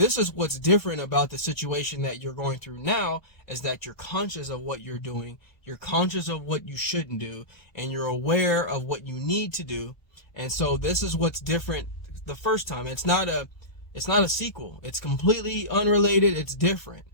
is what's different about the situation that you're going through now, is that you're conscious of what you're doing, you're conscious of what you shouldn't do, and you're aware of what you need to do. And so this is what's different the first time. It's not a sequel. It's completely unrelated. It's different.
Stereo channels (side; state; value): right; late; 1.2 ms